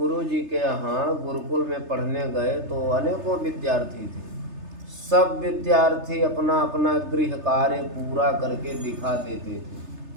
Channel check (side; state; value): left; late; 3.3 ms